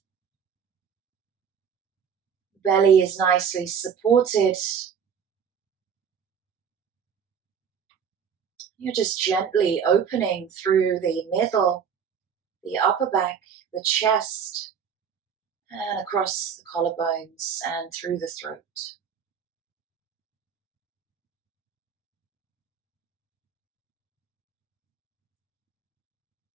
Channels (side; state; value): left; quieter; 7.3 dB